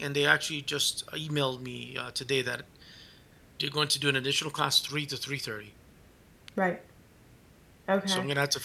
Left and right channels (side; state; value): both; identical; correlation 1.00